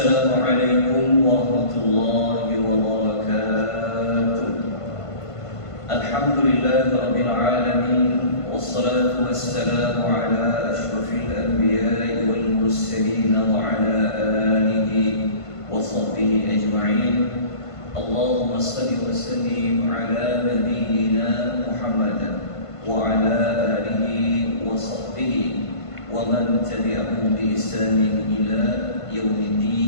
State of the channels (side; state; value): right; late; 1.5 ms